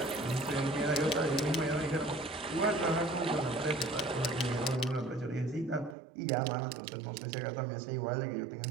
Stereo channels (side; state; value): left; drops out; at 6.0 s